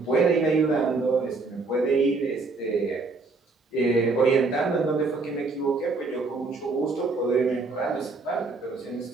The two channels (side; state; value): left; quieter; 3.8 dB